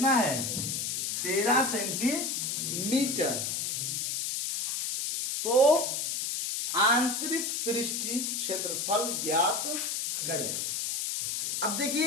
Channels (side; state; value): left; noise; hiss, 1 dB below the sound